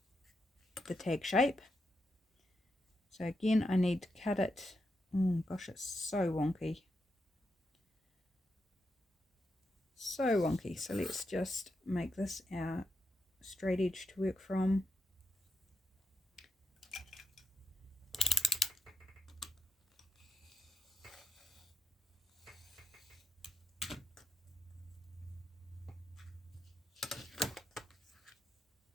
the tag shape. So again, I need to cut it. Oh gosh, it's so wonky. So wonky. So let's just make this our straight edge to work from.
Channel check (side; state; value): both; normal; correlation 0.80